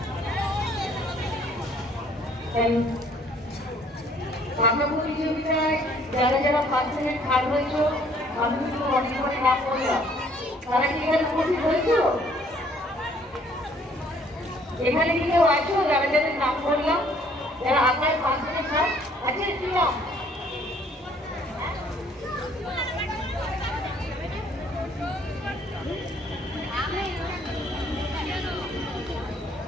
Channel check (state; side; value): normal; both; correlation 0.61